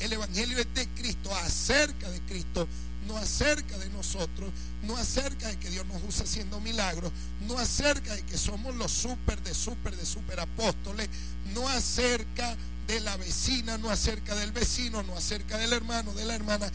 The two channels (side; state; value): both; identical; correlation 1.00